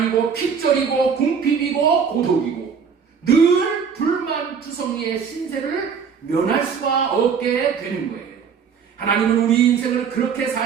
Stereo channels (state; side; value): quieter; left; 6.5 dB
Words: 핍절이고 궁핍이고 고독이고 늘 불만투성이의 신세를 면할 수가 없게 되는 거예요. 하나님은 우리 인생을 그렇게